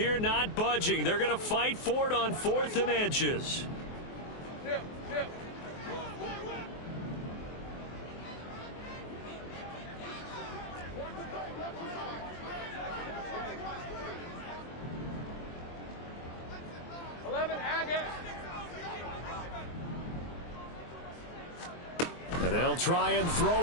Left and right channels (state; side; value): late; right; 24 ms